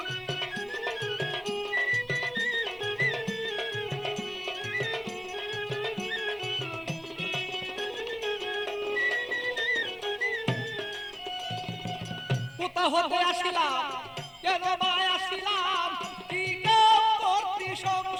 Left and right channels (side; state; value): both; identical; correlation 1.00